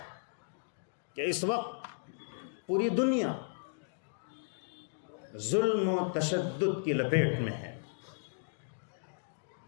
کہ اس وقت پوری دنیا ظلم و تشدد کی لپیٹ میں ہے۔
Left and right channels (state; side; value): silent; right; digital silence